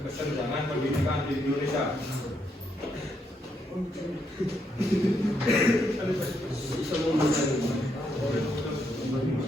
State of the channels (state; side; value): normal; both; correlation 0.77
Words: kesenjangan pendidikan di Indonesia.